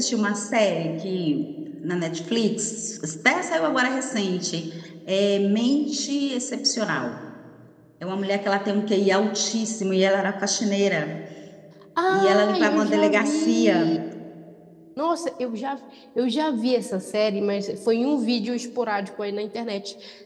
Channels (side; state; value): both; identical; correlation 1.00